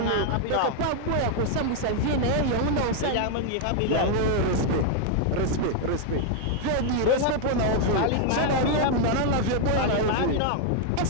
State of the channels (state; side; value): different; both; correlation 0.00